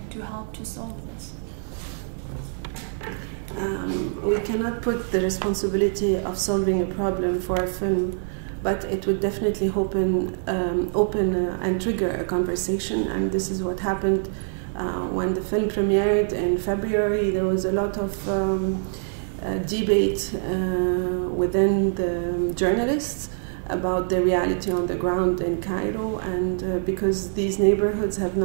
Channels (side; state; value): left; silent; 62 dB below the other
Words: to help to solve this? We cannot put the responsibility of solving a problem for a film, but it would definitely open and trigger a conversation, and this is what happened when the film premiered in February. There was a lot of debate within the journalists about the reality on the ground in Cairo, and because these neighborhoods have